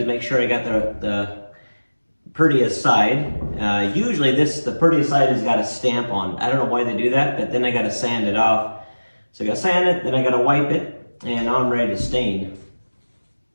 make sure I got the prettiest side. Usually the prettiest side has got a stamp on. I don't know why they do that, but then I got to sand it off. So I got to sand it, then I got to wipe it, and I'm ready to stain.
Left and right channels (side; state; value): both; inverted; correlation -1.00